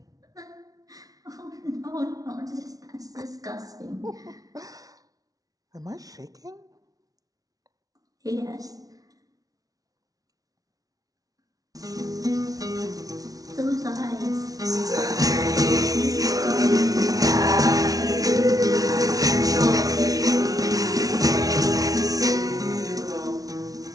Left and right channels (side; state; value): left; late; 0.18 ms